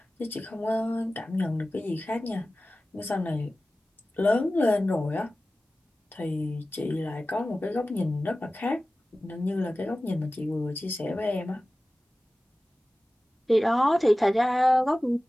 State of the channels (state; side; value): normal; both; correlation 0.96